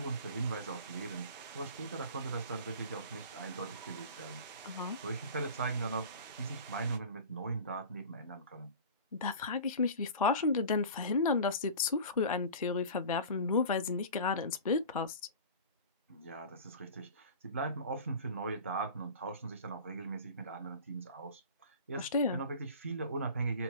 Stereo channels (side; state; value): both; inverted; correlation -0.37